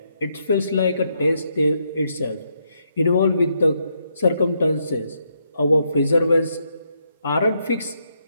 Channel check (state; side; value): inverted; both; correlation -0.78